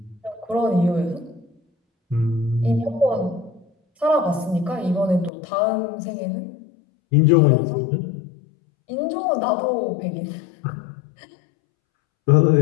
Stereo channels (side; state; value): right; drops out; at 5.3 s